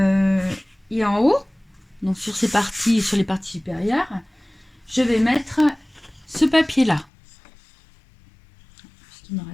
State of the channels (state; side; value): drops out; right; at 7.1 s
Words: et en haut, donc sur les parties supérieures, je vais mettre ce papier là. Puisqu'il me